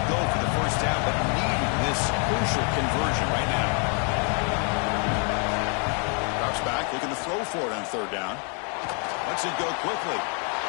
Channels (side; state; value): right; quieter; 38.8 dB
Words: Crucial conversion right now. Drops back, looking to throw for it on 3rd down. Lets it go quickly.